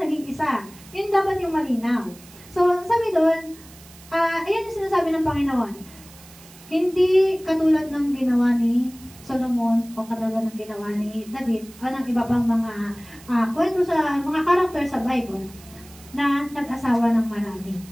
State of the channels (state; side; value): noise; right; hiss, 22 dB below the sound